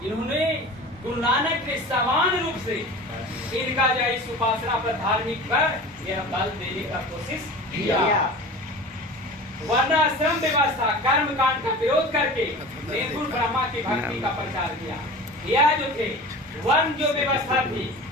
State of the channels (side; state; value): both; normal; correlation 0.36